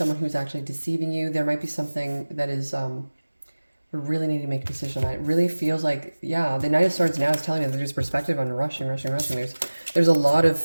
who's actually deceiving you. There might be something that is, we really need to make a decision. It really feels like, yeah, the Knight of Swords now is telling me that there's perspective on rushing. There's a lot of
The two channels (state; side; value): inverted; both; correlation -1.00